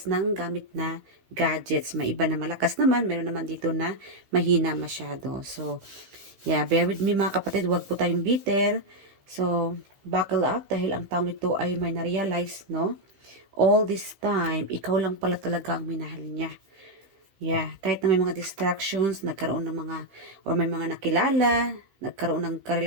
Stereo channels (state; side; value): late; left; 15 ms